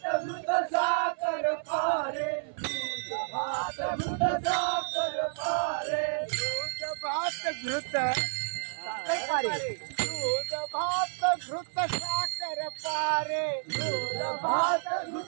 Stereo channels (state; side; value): silent; left; 58 dB below the other